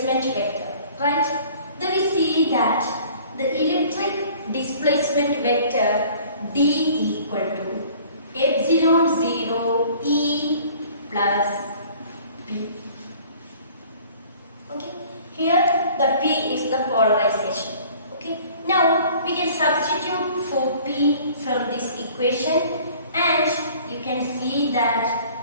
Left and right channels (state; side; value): inverted; both; correlation -0.51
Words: vector, right? Then we see that the electric displacement vector D equal to epsilon 0 E plus P. Okay, here the P is the polarization. Okay, now we can substitute for P from this equation, and you can see that